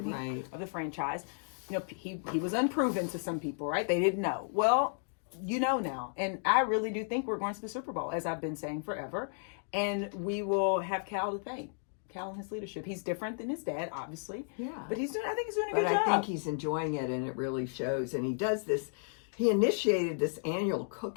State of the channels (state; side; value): silent; right; digital silence